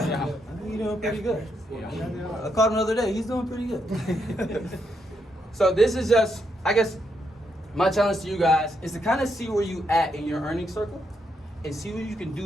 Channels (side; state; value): both; normal; correlation 0.79